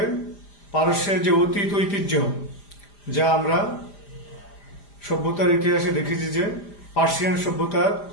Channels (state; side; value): late; right; 5.0 ms